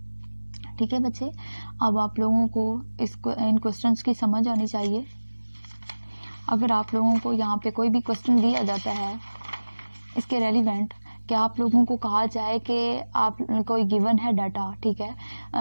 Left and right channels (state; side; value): inverted; both; correlation -1.00